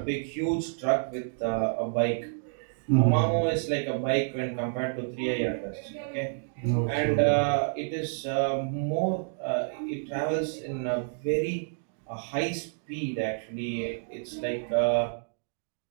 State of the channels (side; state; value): left; silent; digital silence